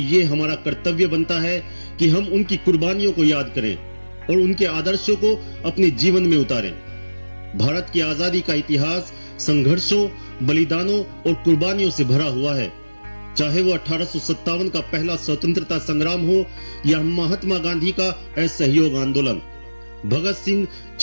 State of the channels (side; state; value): both; inverted; correlation -1.00